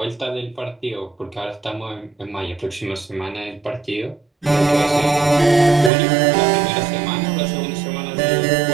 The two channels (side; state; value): left; drops out; at 5.9 s